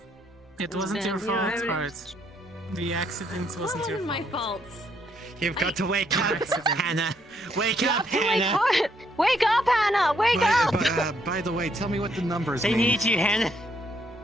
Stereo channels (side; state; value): both; normal; correlation 0.72